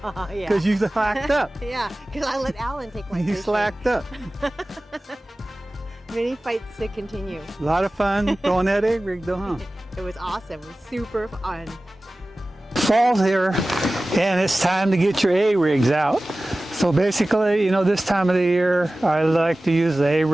Yeah. Because you slacked up. Yeah, because I let Alan take my You fish. slacked up. Many fights to continue. A lot of fun throwing that A-rig though, huh? It was awesome. It was super fun. Fall's here, and it's time to get your A-rigs out. So basically, you know, this time of the year, I like to use the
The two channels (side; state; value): both; normal; correlation 0.97